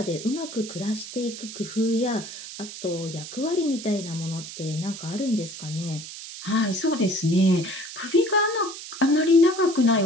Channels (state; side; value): noise; right; hiss, 11 dB below the sound